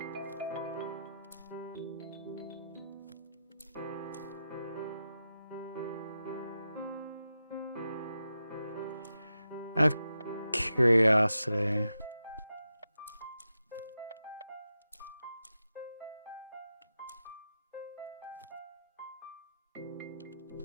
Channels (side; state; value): both; inverted; correlation -0.89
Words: I have curiosity.